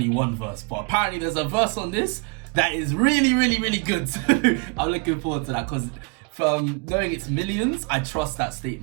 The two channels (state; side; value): quieter; left; 32.5 dB